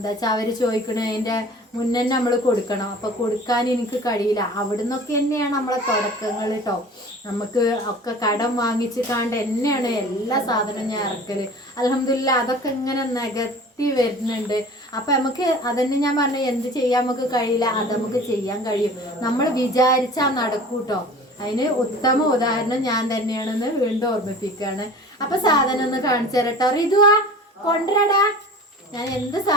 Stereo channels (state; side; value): normal; both; correlation 0.42